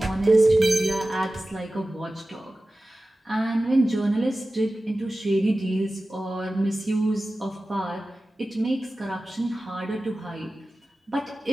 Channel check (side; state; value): both; normal; correlation 0.96